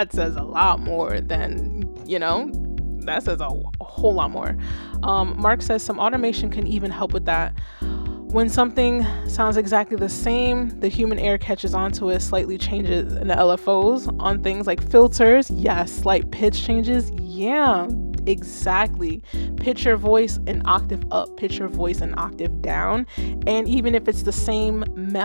says a lot more than, that says a whole lot more. Mark says some automation can even help with that. When something sounds exactly the same, the human ear catches onto it, slightly changes in the LFOs on things like filters. Yes, slight pitch changes. Yeah, exactly. Pitch your voice an octave up, pitch your voice an octave down. And even if it's the same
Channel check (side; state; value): both; inverted; correlation -1.00